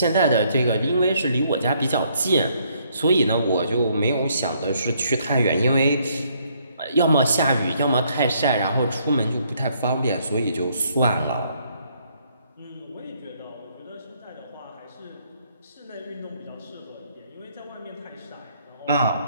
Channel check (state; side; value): inverted; both; correlation -0.69